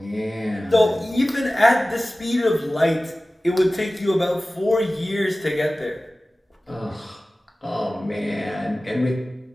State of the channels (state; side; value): normal; both; correlation 0.97